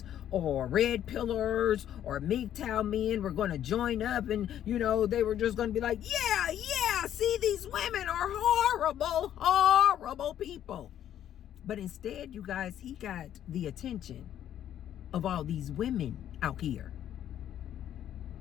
or red pillars or MGTOW men were going to join up and, you know, they were just going to be like, yeah, see, these women are horrible, horrible people. But instead, you guys, he got the attention of all these women out here.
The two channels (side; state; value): right; quieter; 10.8 dB